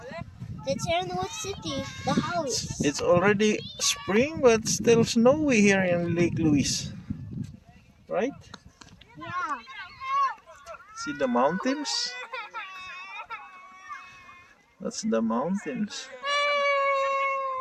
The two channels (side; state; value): both; identical; correlation 1.00